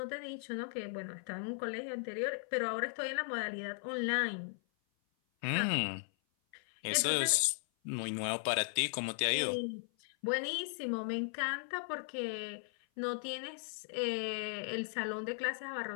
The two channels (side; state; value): right; silent; 53 dB below the other